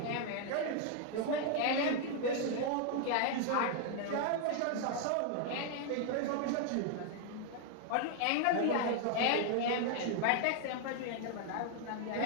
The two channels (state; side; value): different; both; correlation 0.00